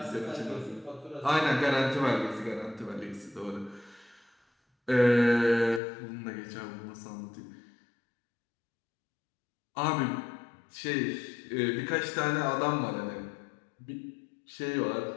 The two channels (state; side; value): drops out; right; at 5.8 s